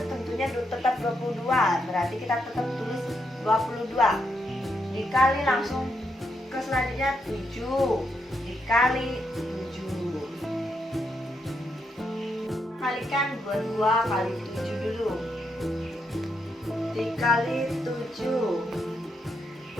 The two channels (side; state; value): both; normal; correlation 0.80